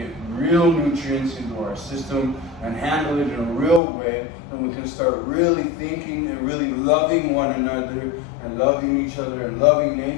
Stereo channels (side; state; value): right; drops out; at 3.8 s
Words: real nutrients into our system and handle it in a real way, then we can start really thinking and really loving one another and loving each other and loving